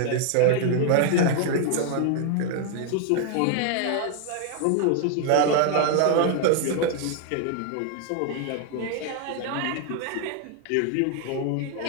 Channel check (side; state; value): both; different; correlation 0.00